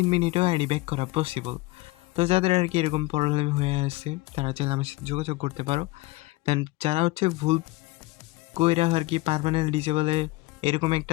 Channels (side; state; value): right; quieter; 21.2 dB